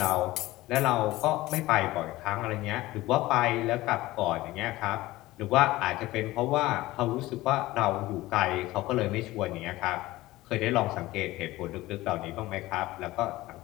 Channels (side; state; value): right; quieter; 18.0 dB